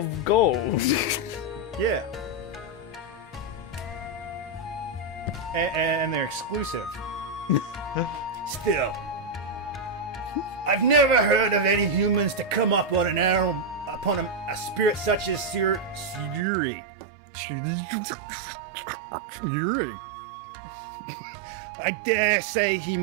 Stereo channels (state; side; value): drops out; left; at 16.4 s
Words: gold. Yeah. And they're exclusive. Still, I've never heard of any humans to come up on a spirit such as Sayuri. I dare say he